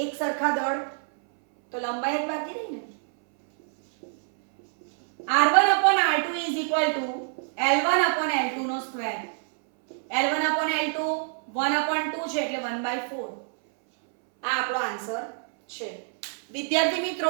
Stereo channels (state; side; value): silent; left; 61 dB below the other